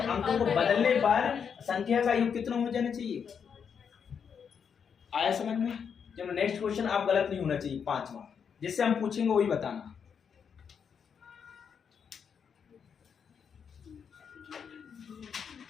को बदलने पर संख्या का योग कितना हो जाना चाहिए, आया समझ में। चलो नेक्स्ट क्वेश्चन, आप गलत नहीं होना चाहिए, 5वां, जिससे हम पूछेंगे वही बताना।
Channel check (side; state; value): right; quieter; 7.0 dB